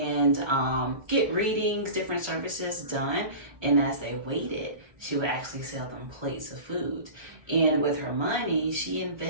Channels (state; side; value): late; left; 1.3 ms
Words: get readings, different services done. And as they waited, she would actually sell them plates of food. And with her money, she